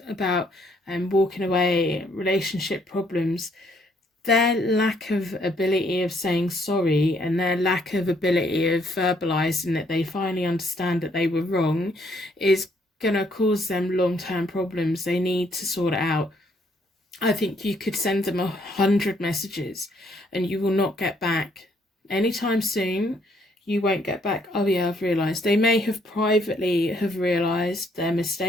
about walking away, relationship problems. Their lack of ability of saying sorry and their lack of ability of verbalizing that they finally understand that they were wrong is going to cause them long-term problems. They need to sort it out. I think you could send them 100 messages and you will not get back anytime soon. You won't get back, oh yeah, I've realised. They may have privately have realised their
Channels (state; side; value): normal; both; correlation 0.69